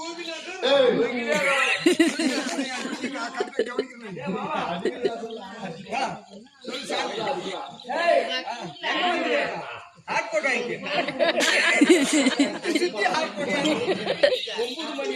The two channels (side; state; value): both; identical; correlation 1.00